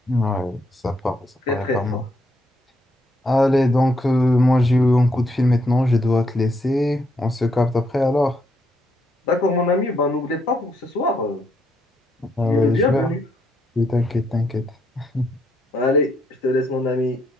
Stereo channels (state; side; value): normal; both; correlation 0.75